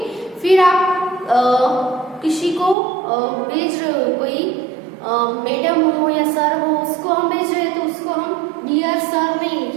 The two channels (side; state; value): left; drops out; at 2.8 s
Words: फिर आप किसी को भेज रहे हो, कोई मैडम हो या सर हो, उसको हम भेज रहे हैं तो उसको हम डियर सर नहीं